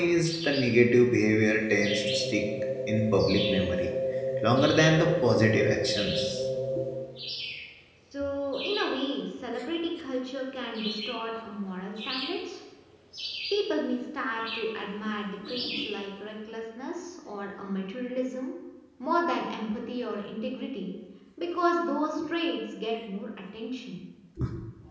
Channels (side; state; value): both; identical; correlation 1.00